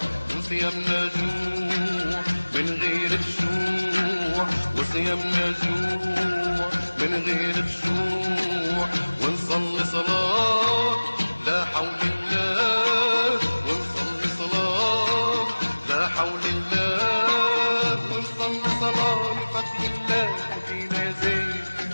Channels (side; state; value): both; inverted; correlation -1.00